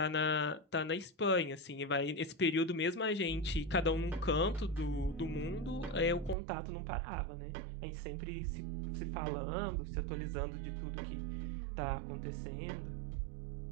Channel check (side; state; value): left; drops out; at 6.4 s